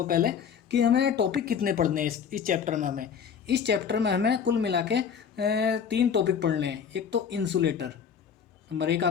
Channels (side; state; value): right; quieter; 7.3 dB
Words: पहले कि हमें टॉपिक कितने पढ़ने हैं इस चैप्टर में। हमें कुल मिला के 3 टॉपिक पढ़ने हैं। एक तो इंसुलेटर, नंबर 1